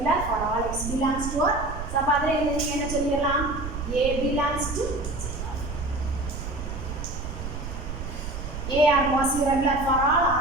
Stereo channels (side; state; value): right; noise; rumble, 7 dB below the sound